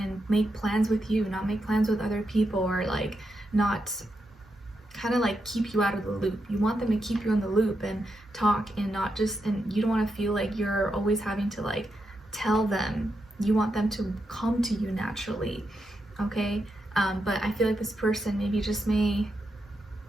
make plans with you, not make plans with other people, or like not kind of like keep you out of the loop. You want them to keep you in the loop and talk, and not just, and you don't want to feel like you're always having to like tell them. You want them to come to you naturally. Okay. But I feel like this person maybe just may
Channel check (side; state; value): both; normal; correlation 0.85